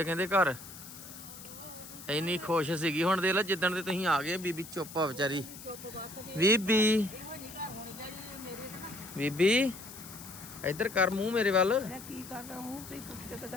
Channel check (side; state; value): left; noise; hiss, 14 dB below the sound